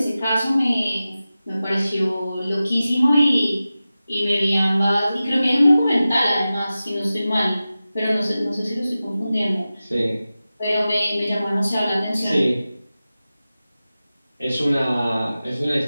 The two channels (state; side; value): inverted; both; correlation -0.95